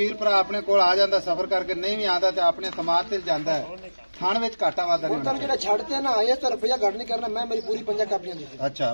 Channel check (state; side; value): inverted; both; correlation -1.00